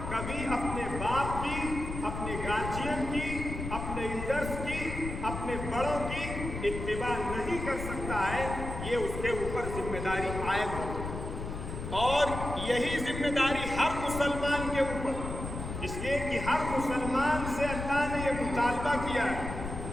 کبھی اپنے باپ کی، اپنے گارجین کی، اپنے ایلڈرز کی، اپنے بڑوں کی اتباع نہیں کر سکتا ہے۔ یہ اس کے اوپر ذمہ داری عائد ہوتی ہے، اور یہی ذمہ داری ہر مسلمان کے اوپر، اس لیے کہ ہر مسلمان سے اللہ نے یہ مطالبہ کیا ہے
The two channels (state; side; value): noise; left; rumble, 6 dB below the sound